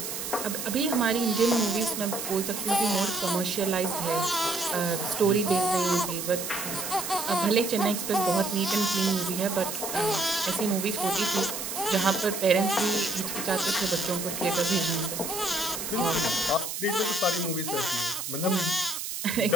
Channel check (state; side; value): noise; right; hiss, 5 dB below the sound